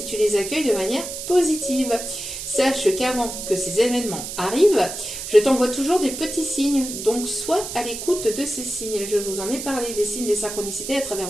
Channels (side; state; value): right; noise; hiss, 7 dB below the sound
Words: tu les accueilles de manière positive. Sache qu'avant que ces événements arrivent, je t'envoie toujours des petits signes. Donc, sois à l'écoute de ces signes. Je vous en ai parlé des signes des synchronicités à travers